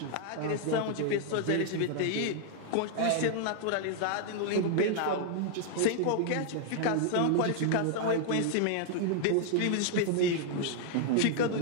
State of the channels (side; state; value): both; different; correlation 0.00